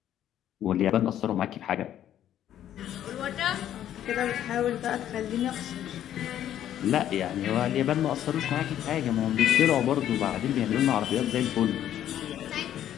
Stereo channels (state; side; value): quieter; right; 11.2 dB